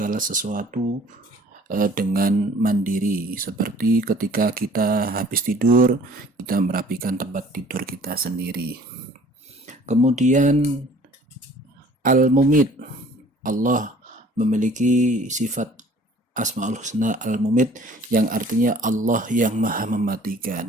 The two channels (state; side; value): normal; both; correlation 0.52